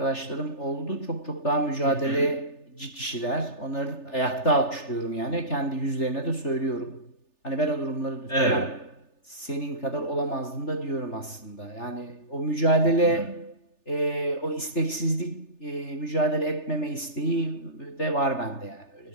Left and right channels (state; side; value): late; right; 3.3 ms